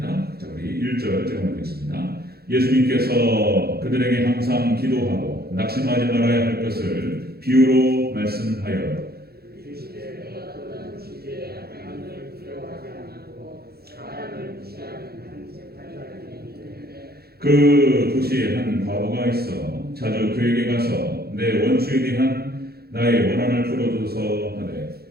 자, 우리 1절 제가 보겠습니다. 예수님께서 그들에게 항상 기도하고 낙심하지 말아야 할 것을 비유로 말씀하여 그 도시에 한 과부가 있어 자주 그에게 가서 내 원수에 대한 나의 원한을 풀어줘서 하되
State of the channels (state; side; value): late; left; 0.46 ms